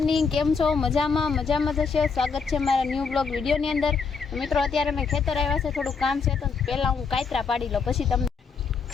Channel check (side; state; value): right; quieter; 5.3 dB